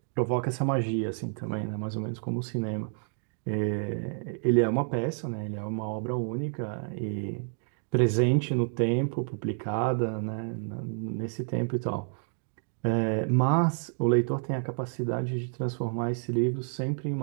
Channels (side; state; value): left; silent; 58 dB below the other